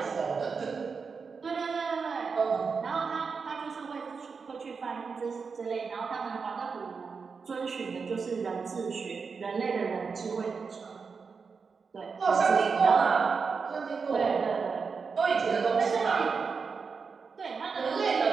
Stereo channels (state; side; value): quieter; left; 5.2 dB